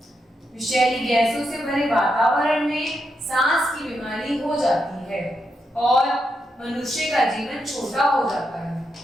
विषैली गैसों से भरे वातावरण में सांस की बीमारी हो जाती है और मनुष्य का जीवन छोटा हो जाता है।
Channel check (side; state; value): both; normal; correlation 0.83